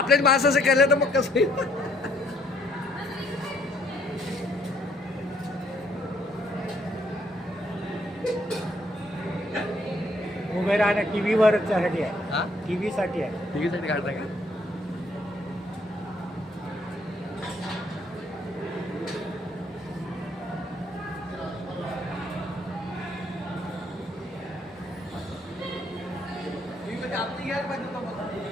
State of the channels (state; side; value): normal; both; correlation 0.68